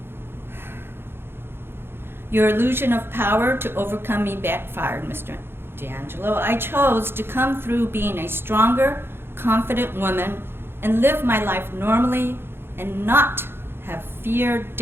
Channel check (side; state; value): left; late; 0.11 ms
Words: Your illusion of power to overcome me backfired, Mr. DeAngelo. I chose to come through being a stronger, confident woman and live my life normally and not have fear